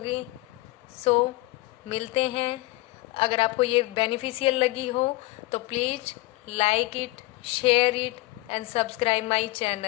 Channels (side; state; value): right; quieter; 20.7 dB